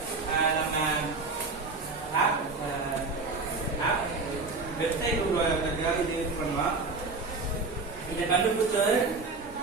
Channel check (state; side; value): quieter; left; 3.8 dB